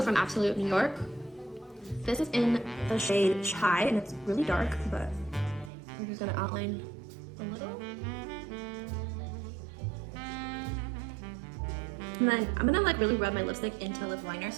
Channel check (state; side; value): drops out; left; at 5.7 s